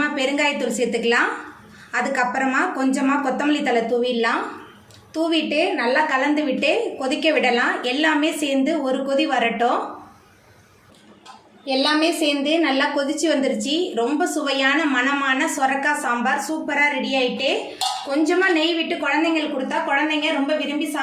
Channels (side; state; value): both; identical; correlation 1.00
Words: பெருங்காயத்தூள் சேர்த்துக்கலாம். அதுக்கப்புறமா கொஞ்சமாக கொத்தமல்லி தழை தூவிடலாம். தூவிட்டு நல்லா கலந்து விட்டு கொதிக்க விடலாம். எல்லாமே சேர்ந்து ஒரு கொதி வரட்டும். எல்லாமே சேர்ந்து நல்லா கொதிச்சு வந்துருச்சு. ரொம்ப சுவையான மணமான சொரக்காய் சாம்பார் சூப்பராக ரெடி ஆகிட்டு, கொஞ்சமாக நெய் விட்டு குழந்தைங்களுக்கு கொடுத்தா குழந்தைங்க ரொம்ப விரும்பி